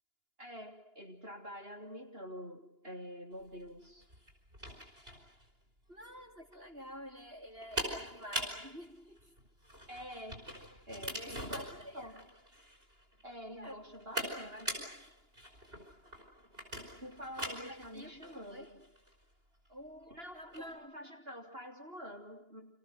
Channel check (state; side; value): late; left; 2.9 ms